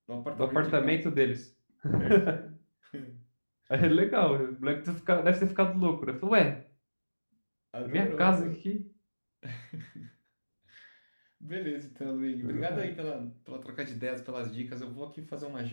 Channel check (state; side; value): inverted; both; correlation -1.00